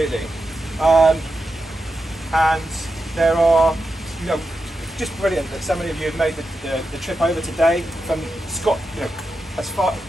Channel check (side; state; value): both; normal; correlation 0.88